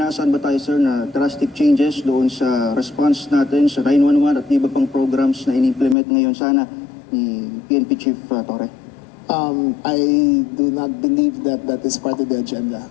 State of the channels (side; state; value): right; drops out; at 6.0 s